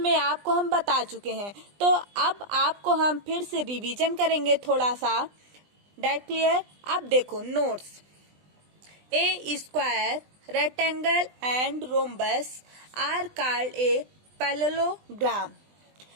आपको हम बता चुके हैं। तो अब आपको हम फिर से रिवीजन करेंगे थोड़ा सा। That clear? अब देखो notes. A square, rectangle and rhombus are called a parallelogram।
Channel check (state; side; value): late; left; 20 ms